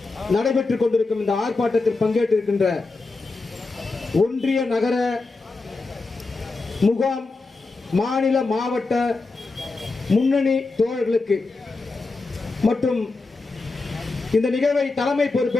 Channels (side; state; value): right; quieter; 3.7 dB